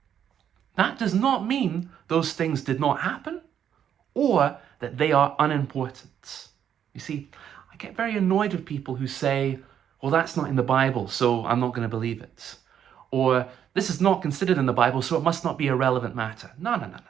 That does not mean those things did not happen or that they are unimportant. You see, I get very annoyed with people who say, well, that's not in the Bible, so I'm not going to believe it. Or this is not considered in the Bible, so it must not be a relevant matter. No.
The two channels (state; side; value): quieter; left; 9.2 dB